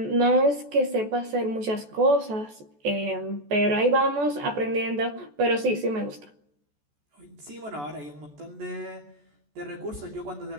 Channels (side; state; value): left; late; 14 ms